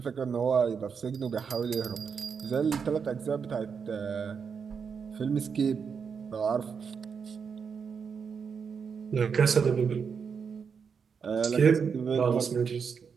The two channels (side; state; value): left; quieter; 6.2 dB